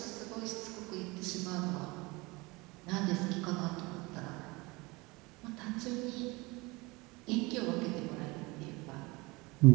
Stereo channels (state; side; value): quieter; left; 24.2 dB